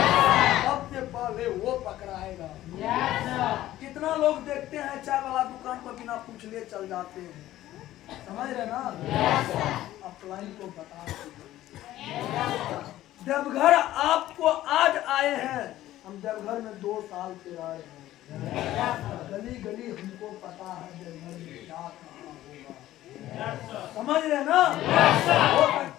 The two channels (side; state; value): right; quieter; 14.4 dB